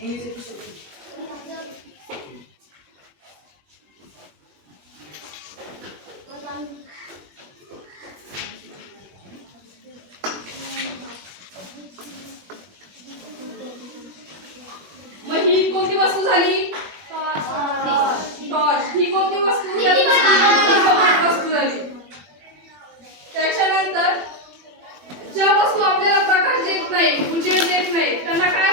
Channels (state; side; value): late; left; 21 ms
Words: मग ही कोणती वस्तू झाली? टॉर्च. ही कोणती वस्तू? दीपमान वस्तू झाली. त्याच्यानंतर ज्या वस्तू आपल्याला प्रकाश देत नाही, उजेड देत नाही, त्यांना काय